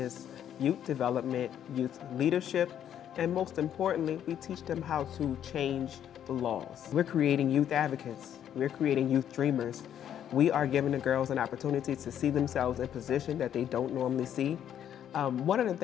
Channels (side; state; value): right; quieter; 10.0 dB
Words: youth development, youth leadership, and most importantly, we teach them how to change the laws. We're creating youth advocates. We're creating youth dreamers. We are giving the girls an opportunity to see themselves in a position that they don't normally see. One of the